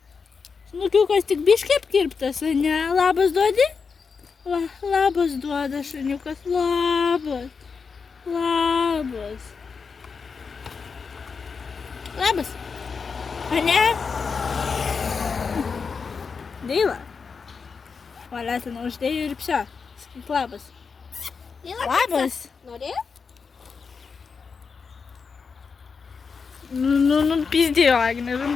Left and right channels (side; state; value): right; quieter; 5.4 dB